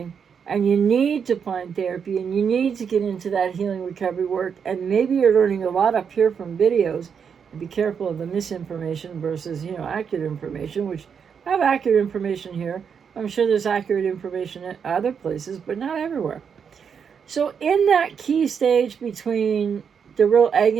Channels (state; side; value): quieter; left; 6.9 dB